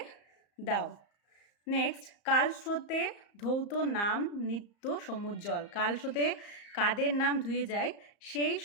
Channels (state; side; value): late; right; 34 ms